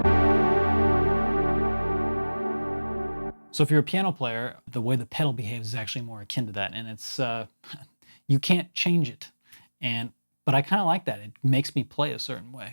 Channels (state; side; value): inverted; both; correlation -1.00